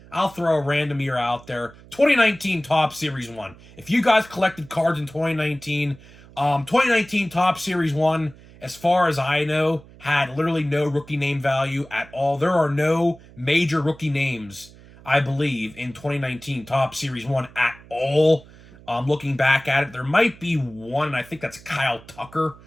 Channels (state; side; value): noise; right; hum, 22 dB below the sound